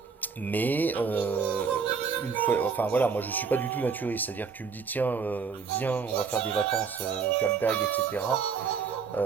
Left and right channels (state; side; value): quieter; left; 5.7 dB